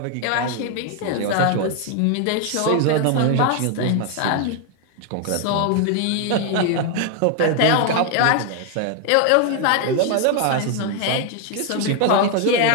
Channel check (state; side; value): different; both; correlation 0.01